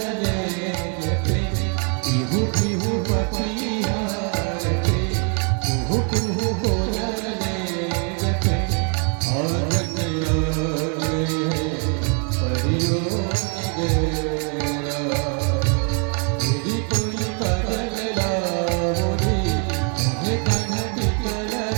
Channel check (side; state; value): left; quieter; 39.5 dB